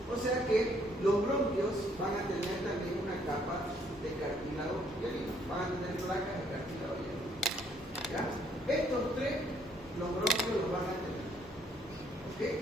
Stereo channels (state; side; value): normal; both; correlation 0.66